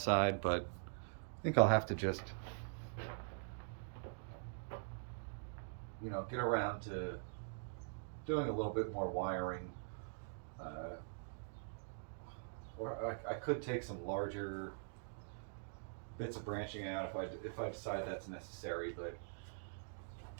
but I think I'll have to just, get around to doing a little bit more wiring. Or I could take some larger bits of branching out if I decide that's necessary, but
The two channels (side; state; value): left; silent; digital silence